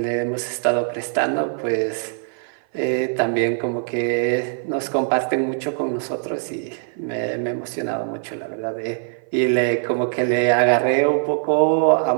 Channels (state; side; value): silent; left; 56 dB below the other